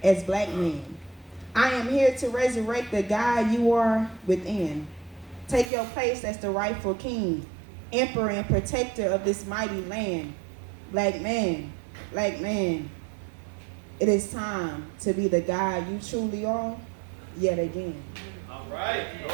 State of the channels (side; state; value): left; drops out; at 5.7 s